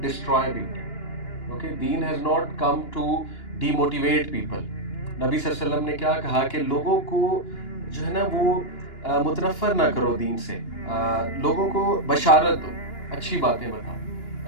destroy people. Okay, دین has not come to demotivate people. نبی صلی اللہ علیہ وسلم نے کیا کہا کہ لوگوں کو جو ہے نا وہ متنفر نہ کرو دین سے، لوگوں کو بشارت دو، اچھی باتیں بتاؤ.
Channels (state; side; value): late; right; 2.9 ms